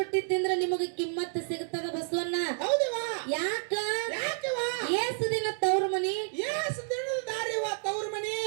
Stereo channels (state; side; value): silent; left; digital silence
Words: ತಿಂದ್ರೆ ನಿಮಗೆ ಕಿಮ್ಮತ್ತ ಸಿಗತದ ಬಸವಣ್ಣ. ಹೌದವಾ? ಯಾಕ? ಯಾಕವ? ಏಸು ದಿನ ತವ್ರ ಮನಿ, ಏಸ್ ದಿನದ ದಾರಿವ ತವ್ರ ಮನಿ.